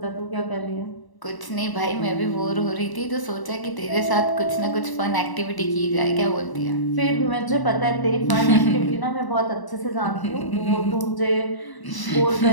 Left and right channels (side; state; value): right; late; 1.0 ms